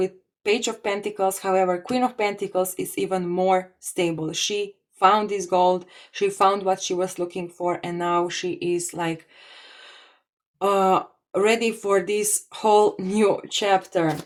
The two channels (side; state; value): both; identical; correlation 1.00